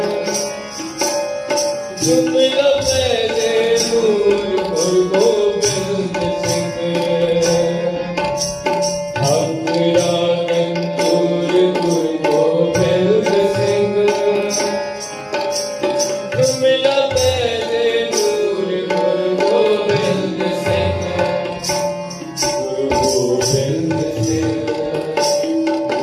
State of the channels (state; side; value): identical; both; correlation 1.00